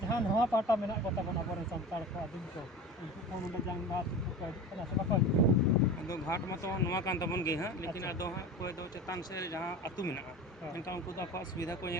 नवा पाटा मेना को तबन अबरे संताल को आदिम को उनको को नोडे जंग बात को कना सब को अदो घाट में तो नवा कान तबन गे हां लेकिन अदो हां कोई दो चेतान से जहां अतु मेना इनका उनको तो आपको सुविधा को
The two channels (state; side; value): normal; both; correlation 0.33